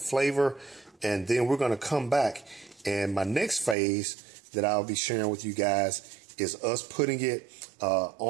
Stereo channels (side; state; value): left; drops out; at 3.8 s